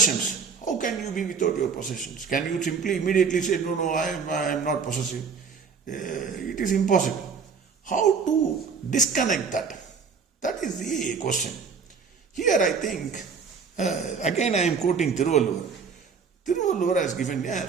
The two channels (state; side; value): quieter; left; 5.7 dB